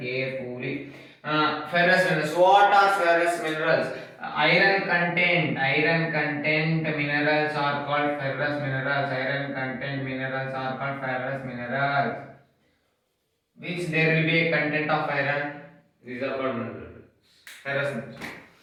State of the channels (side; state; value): both; identical; correlation 1.00